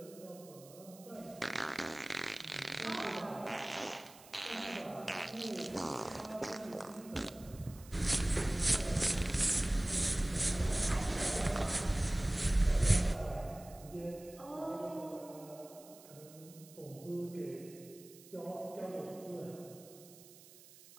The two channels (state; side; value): noise; right; hiss, 21 dB below the sound